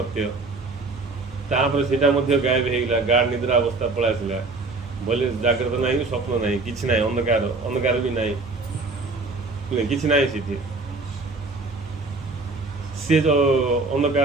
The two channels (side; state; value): left; quieter; 3.5 dB